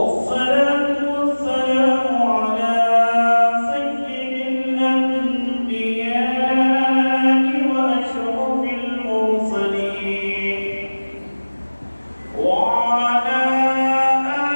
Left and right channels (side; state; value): both; inverted; correlation -1.00